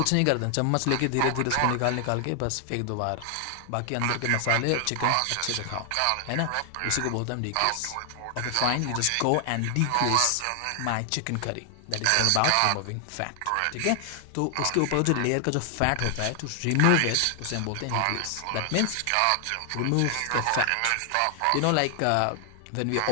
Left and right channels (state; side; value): different; both; correlation 0.00